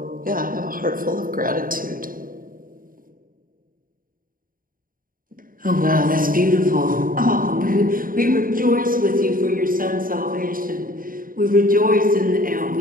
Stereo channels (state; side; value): late; left; 0.41 ms